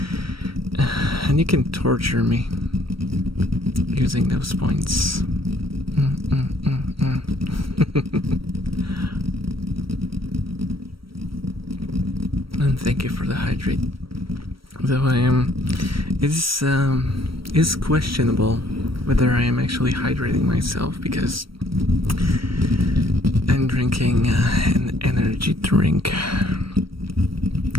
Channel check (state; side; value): late; left; 0.75 ms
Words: and you can torture me using those points. And thank you for the hydrate. Though it is questionable whether I am actually hydrating myself, because I'm drinking an energy drink.